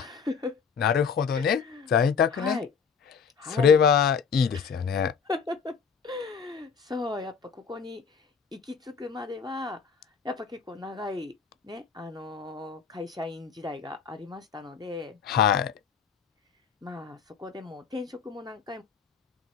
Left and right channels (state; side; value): quieter; right; 6.3 dB